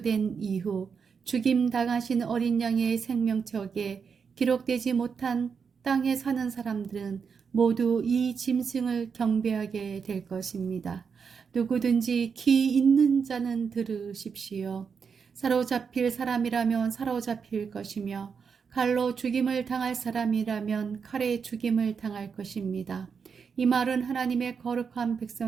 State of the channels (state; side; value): quieter; left; 6.1 dB